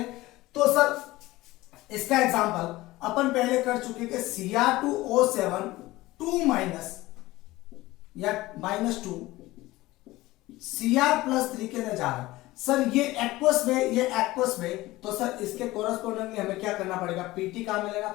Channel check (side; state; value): right; quieter; 18.5 dB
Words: तो सर इसका एग्जांपल अपन पहले कर चुके कि Cr2O7 2 माइनस या -2 Cr+3 के अंदर जा रहा है। सर ये एक्वस में तो सर इसके कोरस्पोंडिंगली हमें क्या करना पड़ेगा? पीटी काम में लेना